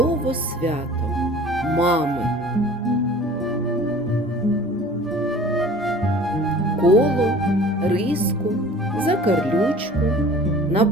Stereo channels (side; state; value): both; normal; correlation 0.45